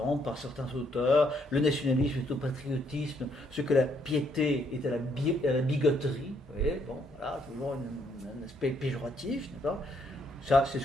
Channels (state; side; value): normal; both; correlation 0.71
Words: par certains auteurs. Le nationalisme est au patriotisme, ce que la piété est à la bigoterie. Vous voyez, bon, voilà, toujours un aspect péjoratif, n'est-ce pas? Ça, c'est